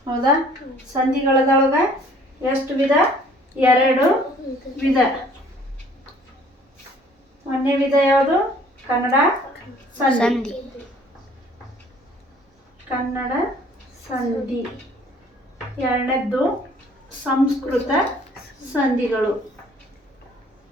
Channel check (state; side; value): normal; both; correlation 0.56